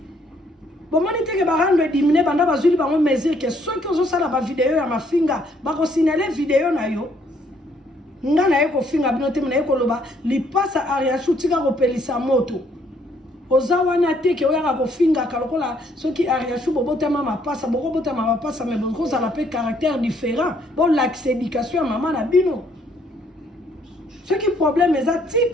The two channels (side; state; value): both; normal; correlation 0.67